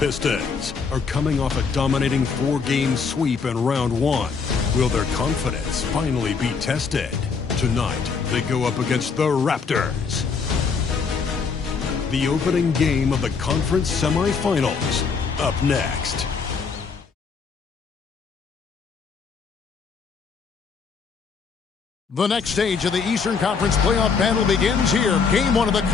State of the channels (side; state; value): right; quieter; 5.4 dB